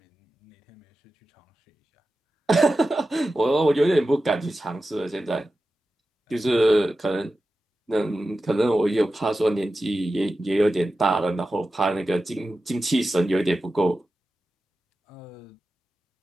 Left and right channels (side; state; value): both; normal; correlation 0.93